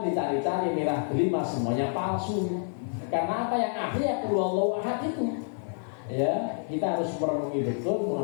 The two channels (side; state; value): right; silent; digital silence